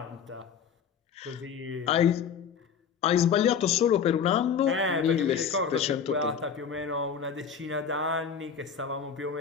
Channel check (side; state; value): right; quieter; 7.1 dB